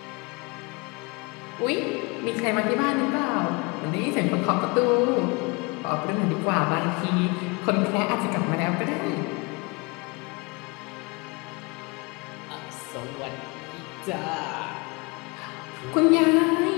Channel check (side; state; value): right; quieter; 28.6 dB